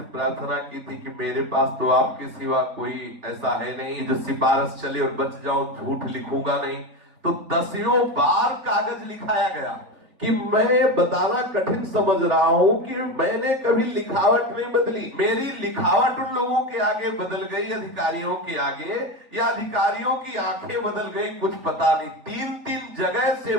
प्रार्थना की थी कि मेरे पास तो आपके सिवा कोई ऐसा है नहीं जो सिफारिश चले और बच जाओ, झूठ लिखूंगा नहीं। तो 10 बार कागज लिखाया गया कि मैं बताना कठिन समझ रहा हूं कि मैंने कभी लिखावट नहीं बदली। मेरी लिखावट उन लोगों के आगे बदल गई, अधिकारियों के आगे, या अधिकारियों की आंखें बदल गई, कुछ पता नहीं। 3 जगह से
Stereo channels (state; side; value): late; left; 3.9 ms